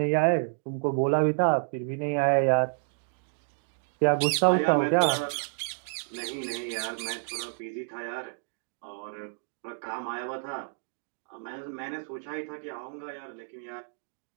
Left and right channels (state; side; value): silent; left; digital silence